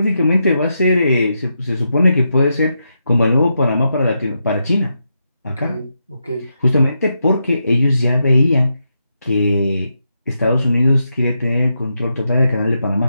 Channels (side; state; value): both; inverted; correlation -0.84